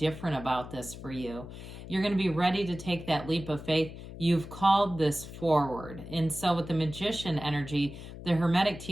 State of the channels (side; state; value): left; noise; hum, 12 dB below the sound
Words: about this for you. You're going to be ready to take that leap of faith. You've called this forward. And so with the Magician energy, the Hermetic